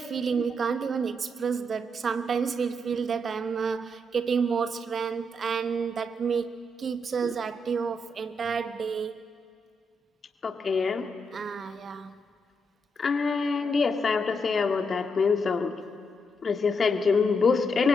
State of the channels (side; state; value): both; normal; correlation 0.80